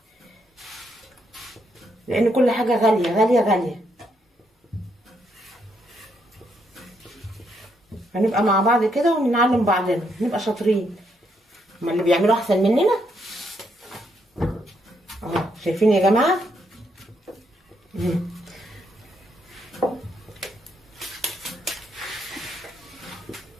لان كل حاجه غاليه غاليه غاليه. هنبقى مع بعض كده ونعلم بعضنا، نبقى شاطرين. هما اللي بيعملوا احسن مننا اهو، شايفين يا جماعه.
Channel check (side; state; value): both; normal; correlation 0.76